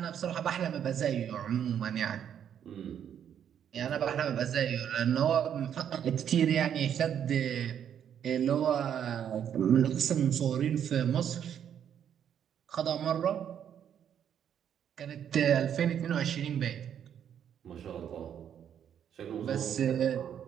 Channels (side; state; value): left; quieter; 9.1 dB